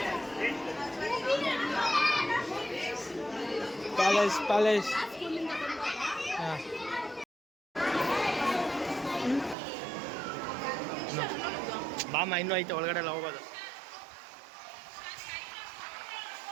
ಪ್ಯಾಲೇಸ್ ಬಾಮ ಇನ್ನೂ ಐತೆ ಒಳಗಡೆ ಎಲ್ಲ ಹೋಗೋದು.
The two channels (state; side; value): drops out; left; at 9.6 s